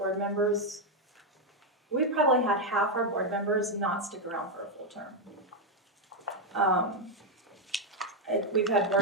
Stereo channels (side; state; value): both; normal; correlation 0.02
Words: members. We probably had half our board members not stick around for a full term. We've had